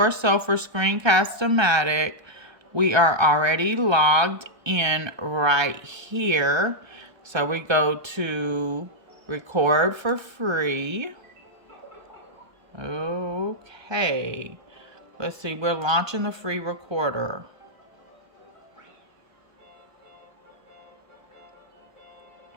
so for Screencast O Matic, we are already logged in right here. So we go to record for free. Okay. Let's see, we're launching the free recorder.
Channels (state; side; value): late; left; 1.3 ms